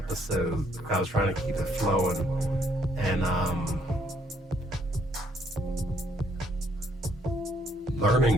I was trying to keep it flowing, and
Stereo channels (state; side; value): normal; both; correlation 0.68